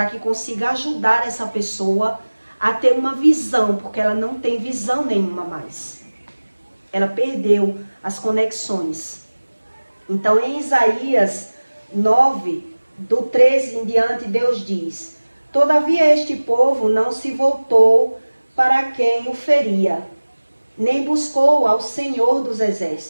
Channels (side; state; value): both; inverted; correlation -1.00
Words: que consiga ajudar essa pessoa a ter uma visão, porque ela não tem visão nenhuma mais. Ela perdeu as conexões. Então, em Isaías 9, do 13 em diante, Deus diz: todavia este povo não se voltou para quem o feria, nem buscou ao Senhor dos